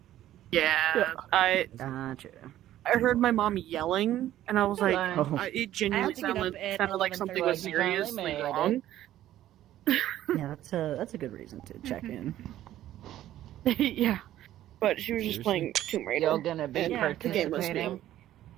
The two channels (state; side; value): quieter; left; 13.1 dB